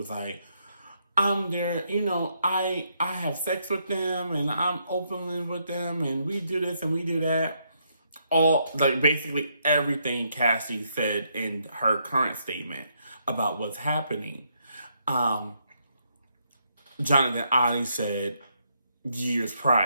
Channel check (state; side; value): inverted; both; correlation -0.76